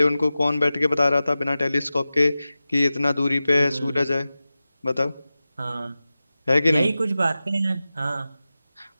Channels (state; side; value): inverted; both; correlation -0.95